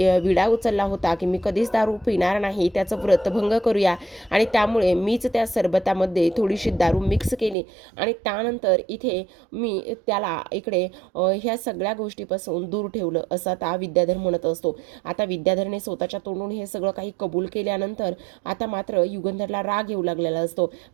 विडा उचलला होता की मी कधीच दारू पिणार नाही त्याचं व्रतभंग करूया, आणि त्यामुळे मीच त्या सरबतामध्ये थोडीशी दारू मिक्स केली आणि त्यानंतर इथे मी त्याला इकडे ह्या सगळ्या गोष्टीपासून दूर ठेवलं असं आता विद्याधर म्हणत असतो. आता विद्याधरने स्वतःच्या तोंडून हे सगळं काही कबूल केल्यानंतर आता मात्र युगंधरला राग येऊ लागलेला असतो.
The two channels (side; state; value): left; drops out; at 7.6 s